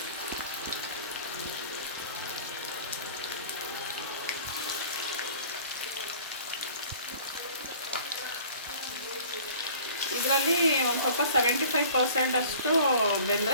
ಇದರಲ್ಲಿ ಒಂದು ಸ್ವಲ್ಪ 75% ಅಷ್ಟು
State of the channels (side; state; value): both; inverted; correlation -0.48